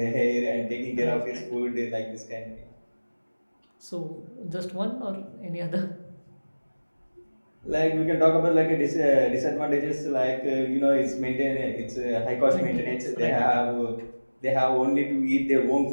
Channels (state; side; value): inverted; both; correlation -1.00